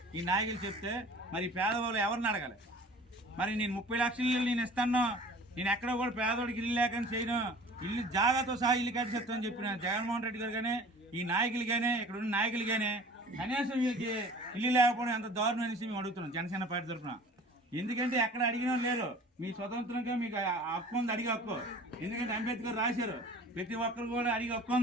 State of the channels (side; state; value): both; normal; correlation 0.44